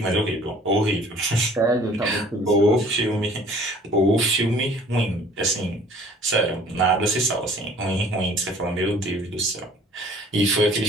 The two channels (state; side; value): normal; both; correlation 0.52